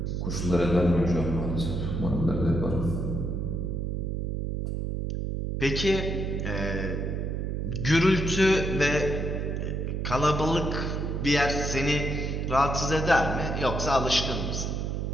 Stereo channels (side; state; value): right; noise; hum, 2 dB below the sound